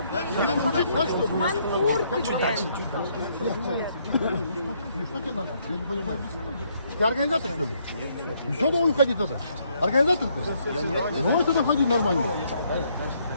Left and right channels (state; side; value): inverted; both; correlation -0.71